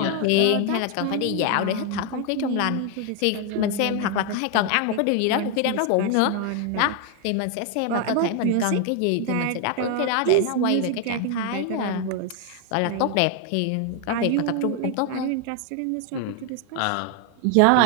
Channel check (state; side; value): different; both; correlation 0.01